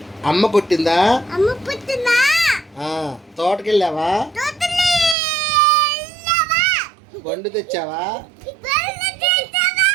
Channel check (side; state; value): left; drops out; at 5.2 s